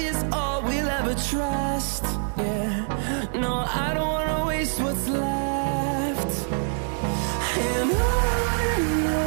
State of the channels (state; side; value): silent; left; digital silence